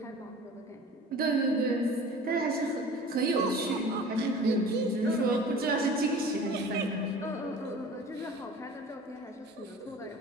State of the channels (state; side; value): normal; both; correlation 0.42